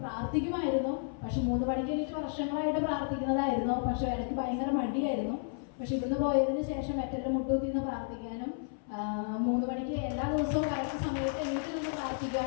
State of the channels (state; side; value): silent; right; 56 dB below the other